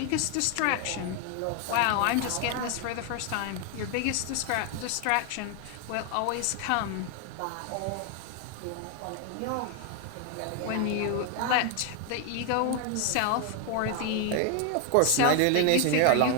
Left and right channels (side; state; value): both; different; correlation 0.01